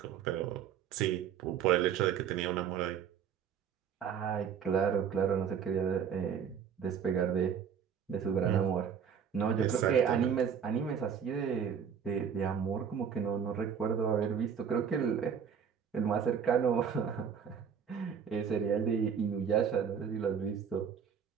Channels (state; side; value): quieter; left; 7.5 dB